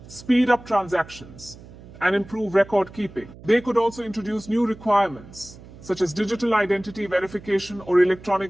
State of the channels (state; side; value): noise; right; hum, 19 dB below the sound